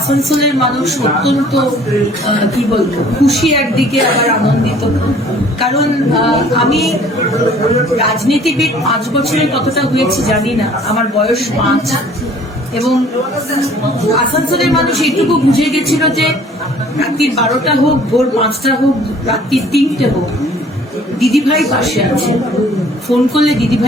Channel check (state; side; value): normal; both; correlation 0.54